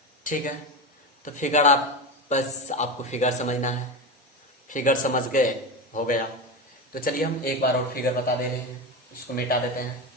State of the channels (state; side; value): normal; both; correlation 0.20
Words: ठीक है। तो फिगर आप बस आपको फिगर समझना है, फिगर समझ गए हो गया। तो चलिए हम एक बार और फिगर बता दे रहे हैं, इसको मिटा देते हैं,